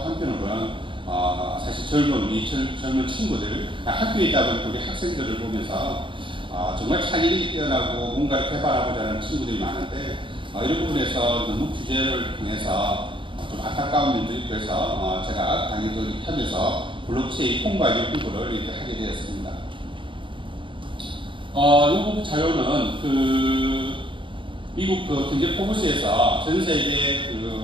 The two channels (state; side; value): late; left; 0.24 ms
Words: 사실 젊은 친구들 학교에 있다 보니 우리 학생들을 보면서 정말 창의력이 뛰어나고 뭔가를 개발하고자 하는 친구들이 많은데 이런 부분에서 너무 규제를 통해서 좀 안타까운 면도 있고 해서 제가 강의도 하면서 블록체인 홍보하기 공부를 이렇게 하게 되었습니다. 이 자료는 미국 경제포브스에서 전 세계